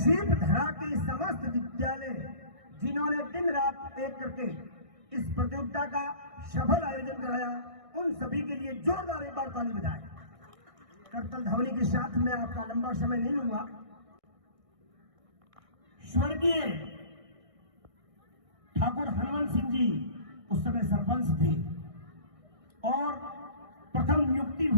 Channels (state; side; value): late; left; 1.6 ms